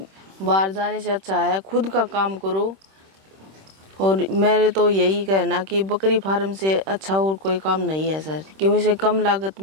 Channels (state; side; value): late; left; 26 ms